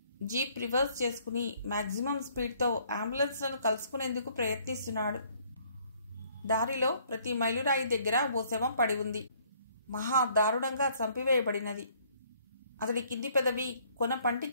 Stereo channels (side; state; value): both; inverted; correlation -0.63